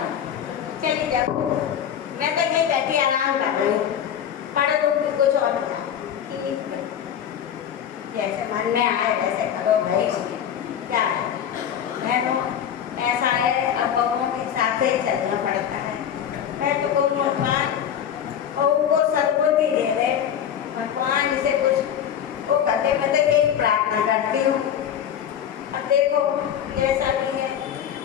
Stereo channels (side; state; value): right; quieter; 9.2 dB